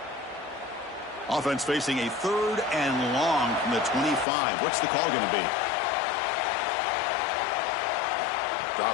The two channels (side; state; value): right; drops out; at 4.2 s